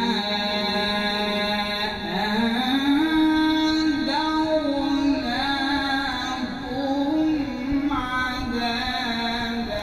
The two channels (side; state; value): both; identical; correlation 1.00